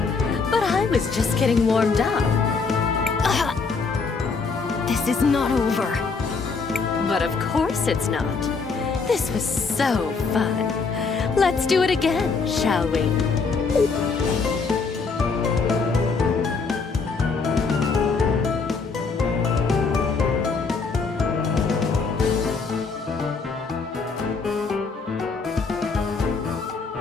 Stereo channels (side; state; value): right; quieter; 4.7 dB